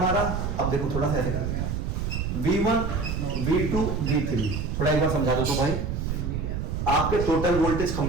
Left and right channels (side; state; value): right; noise; rumble, 2 dB below the sound